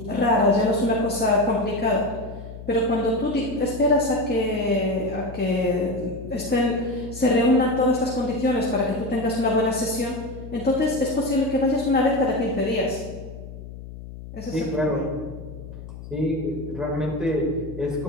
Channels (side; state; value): left; noise; hum, 13 dB below the sound